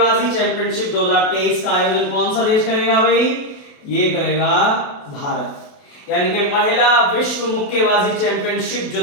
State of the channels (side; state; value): right; late; 28 ms